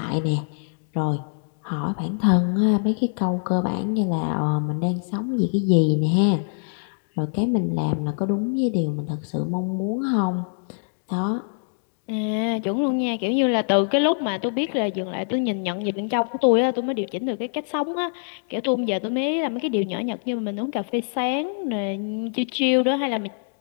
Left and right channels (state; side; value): silent; right; digital silence